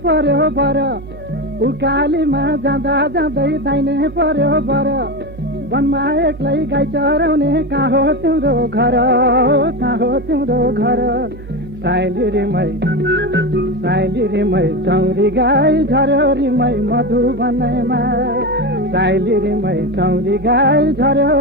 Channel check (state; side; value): noise; right; hum, 16 dB below the sound